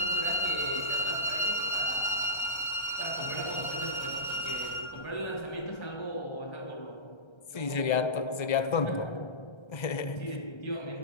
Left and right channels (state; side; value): late; right; 1.3 ms